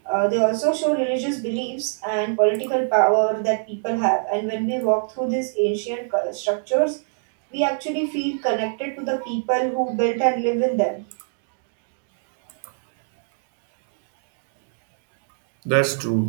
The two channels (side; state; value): left; silent; digital silence